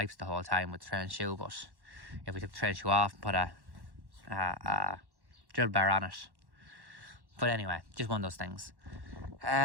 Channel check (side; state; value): left; late; 1.1 ms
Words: the whole time with the trail and shoe, but if we took the trail and shoe off and put a drill bar on it. But anyway, just one of those things.